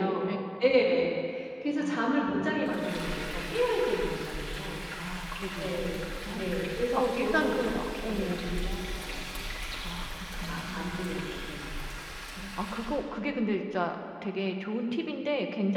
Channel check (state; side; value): identical; both; correlation 1.00